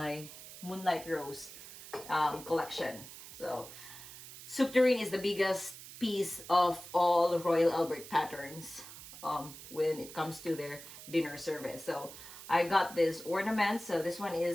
Moonlight Rose collection. So soup tureen is the biggest piece of all Royal Albert patterns when it comes to their dinner service. So I got this ornament. So this one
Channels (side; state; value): right; noise; hiss, 14 dB below the sound